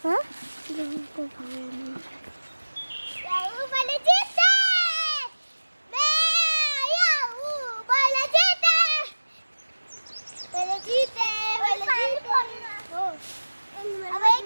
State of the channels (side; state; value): both; inverted; correlation -1.00